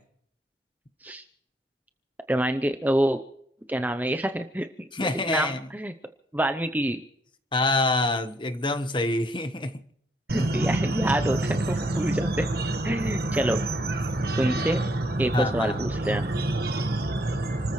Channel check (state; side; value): normal; both; correlation 0.70